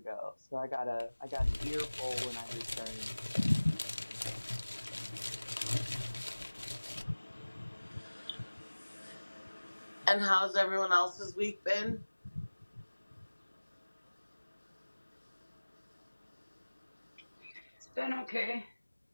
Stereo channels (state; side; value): inverted; both; correlation -1.00